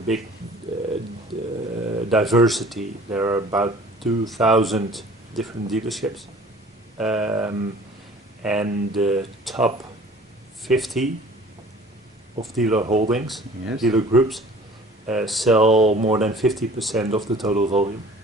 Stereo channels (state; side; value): normal; both; correlation 0.48